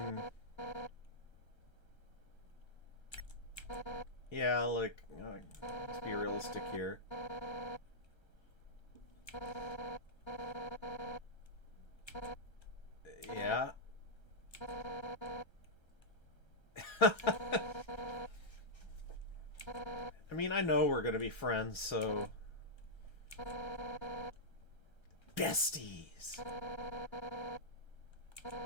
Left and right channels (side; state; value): right; late; 1.3 ms